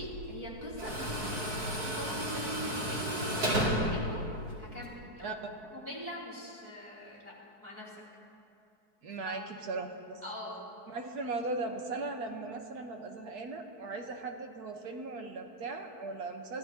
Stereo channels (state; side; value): late; left; 4.6 ms